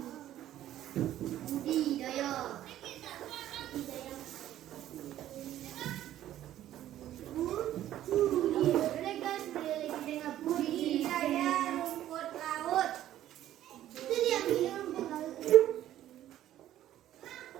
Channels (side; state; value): left; quieter; 12.7 dB